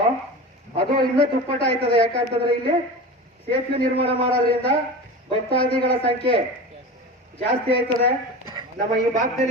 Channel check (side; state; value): both; normal; correlation 0.30